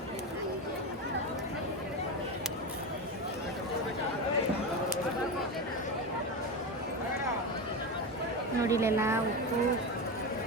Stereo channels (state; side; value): normal; both; correlation 0.18